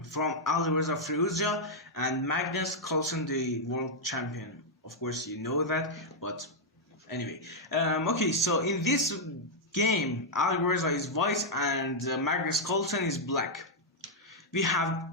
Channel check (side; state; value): both; normal; correlation -0.03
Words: from Alireza Firouzja and Magnus, Carlsen, the world champion. Of course you know that, but anyway. Okay, so in this game, Alireza is white and Magnus Carlsen is black. We